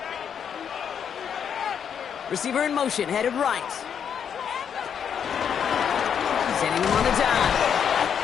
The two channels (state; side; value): quieter; right; 7.9 dB